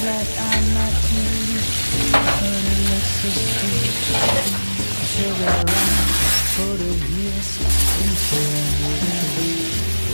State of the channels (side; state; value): both; inverted; correlation -1.00